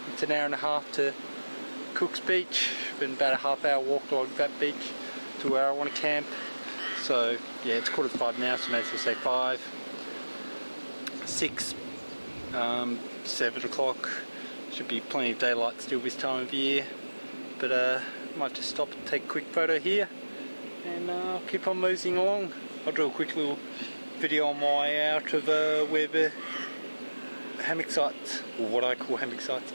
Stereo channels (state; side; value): inverted; both; correlation -1.00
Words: an hour and a half to Cook's Beach, been about a half-hour walk along that beach to where I want to camp. So yeah, it's 4:45 now, so may as well say 5, 6, 7 o'clock. Should be plenty of daylight still this time of year, but might just stop and take a quick photo here, and I'll keep on moseying along. I'll do a quick little video on my way out of where the hammock sites, or what I call hammock sites,